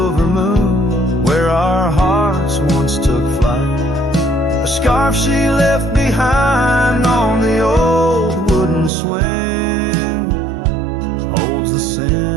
moon, where our hearts once took flight. A scarf she left behind on the old wooden swing holds the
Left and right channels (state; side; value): drops out; left; at 8.9 s